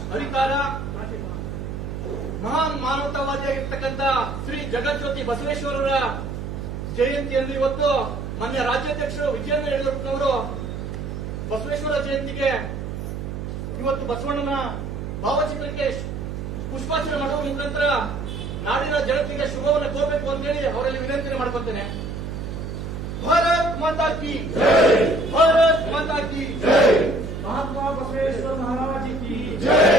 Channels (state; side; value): noise; right; hum, 6 dB below the sound